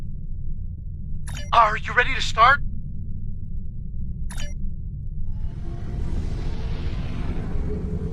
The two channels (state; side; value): identical; both; correlation 1.00